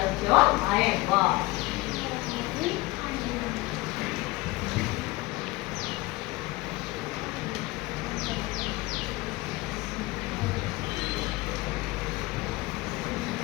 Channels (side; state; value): right; quieter; 21.3 dB